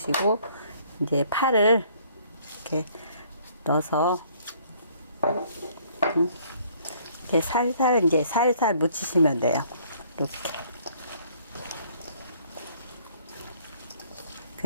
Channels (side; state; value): both; inverted; correlation -0.60